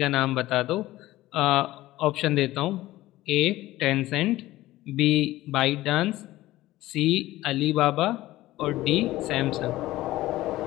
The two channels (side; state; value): right; quieter; 16.6 dB